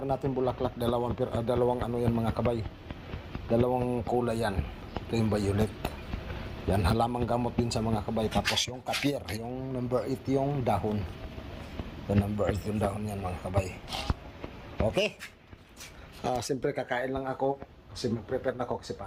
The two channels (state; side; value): identical; both; correlation 1.00